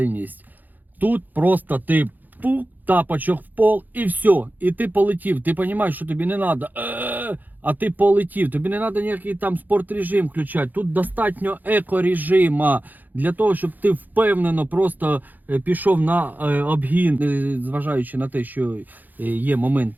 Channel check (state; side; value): late; left; 0.085 ms